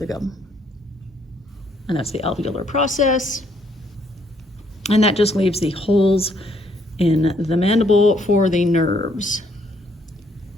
gum. And that's the alveolar process. And that just leaves the holes in the mandible for the nerves.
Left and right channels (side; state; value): both; normal; correlation 0.69